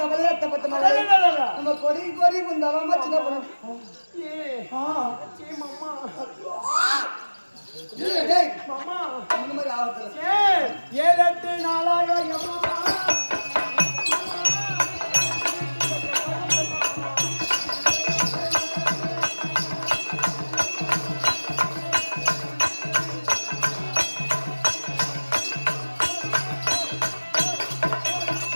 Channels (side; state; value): both; inverted; correlation -1.00